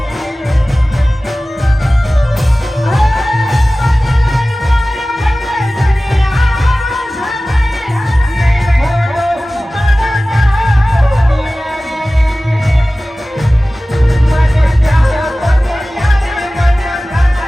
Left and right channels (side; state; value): both; normal; correlation 0.97